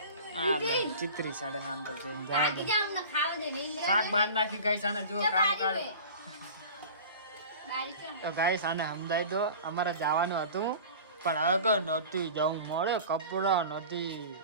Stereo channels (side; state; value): both; inverted; correlation -0.38